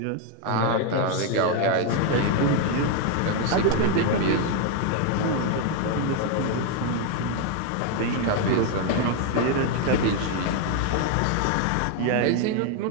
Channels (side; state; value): both; different; correlation 0.01